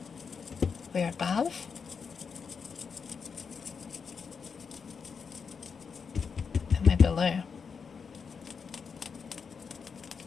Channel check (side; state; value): right; quieter; 5.8 dB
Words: We're above. And we're below.